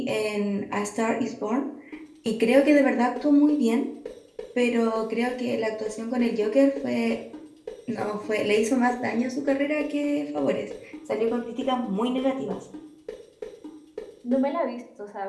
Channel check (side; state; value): both; identical; correlation 1.00